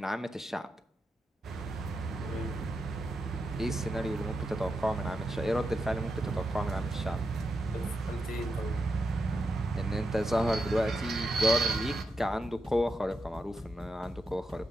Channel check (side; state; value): both; normal; correlation 0.86